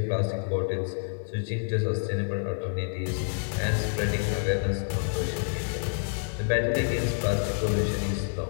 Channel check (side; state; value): right; silent; digital silence